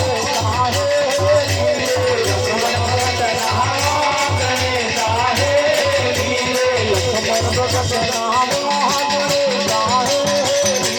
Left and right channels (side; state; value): both; identical; correlation 1.00